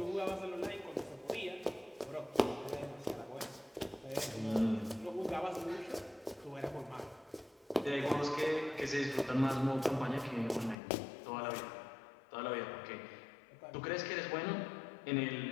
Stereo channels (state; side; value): drops out; right; at 10.8 s